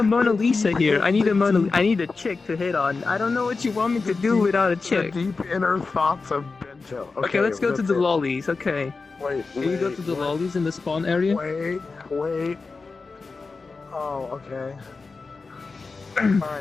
Mona Lisa here. I need a chick to hit on. I don't know what you want me to do without a chick. The deep inner thoughts of Bento. Okay, let's go to the lollies. Okay. Wait. Can you go to the lollies in the spawn area? Wait. Oh, okay.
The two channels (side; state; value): right; quieter; 4.2 dB